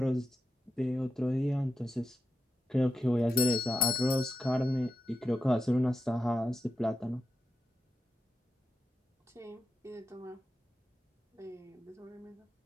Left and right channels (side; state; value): both; normal; correlation 0.88